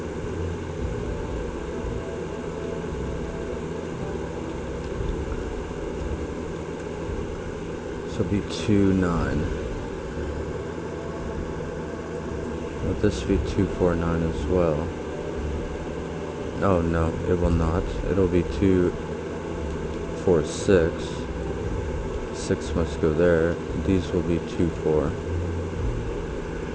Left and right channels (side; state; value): both; identical; correlation 1.00